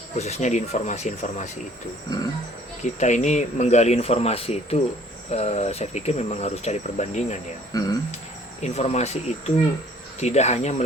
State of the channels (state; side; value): normal; both; correlation 0.56